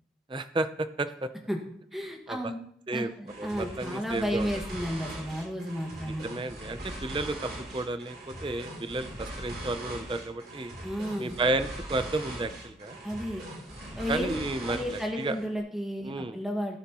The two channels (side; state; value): both; normal; correlation 0.67